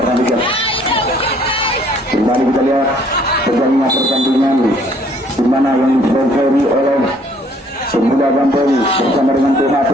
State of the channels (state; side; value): normal; both; correlation 0.61